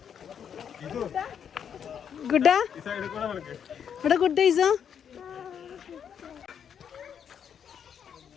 ഗുഡാ ഇവിടെ ഗുഡ് ഡേയ്സോ?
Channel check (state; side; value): quieter; right; 8.1 dB